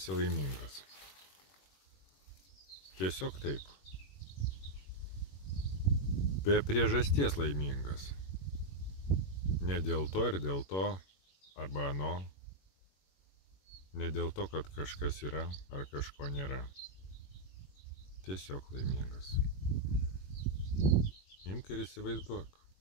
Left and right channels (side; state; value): right; late; 21 ms